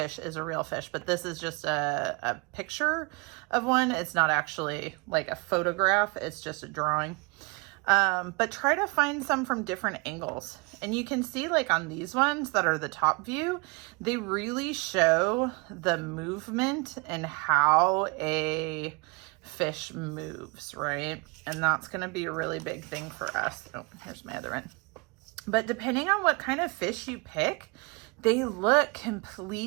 is a real fish, but this is just a picture of one. It's not actually like a photograph. It's just a drawing. But try to find some from different angles. And you can see like on these ones that are the top view, they really show the movement and how a fish moves, right? And that's going to be a really big thing for us. Oh, here's my other one. But depending on what kind of fish you pick, they look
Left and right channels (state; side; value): quieter; left; 29.3 dB